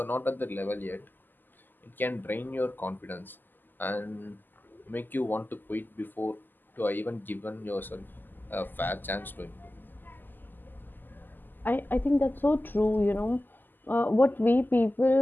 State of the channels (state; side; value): late; right; 0.090 ms